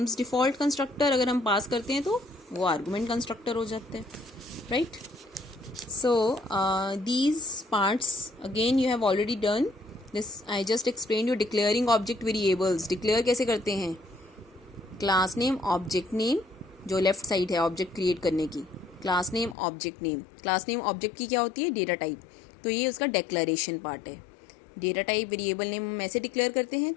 default constructor. अगर हम पास करते हैं तो वो आर्गुमेंट कंस्ट्रक्टर हो जाता है, right. So these parts again you have already done this I just explain you declaring object variables. Declare कैसे करते हैं? क्लास नेम, ऑब्जेक्ट नेम, जो लेफ्ट साइड है ऑब्जेक्ट क्रिएट करने की, class name, object name. Class name object की क्या होती है? Data type. तो ये उसका डिक्लेरेशन पार्ट है. डेटा टाइप वेरिएबल नेम हम ऐसे डिक्लेयर करते हैं,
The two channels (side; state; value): right; drops out; at 19.6 s